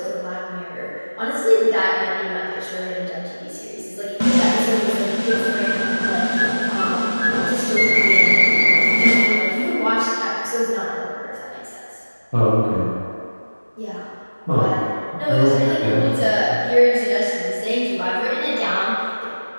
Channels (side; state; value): both; inverted; correlation -1.00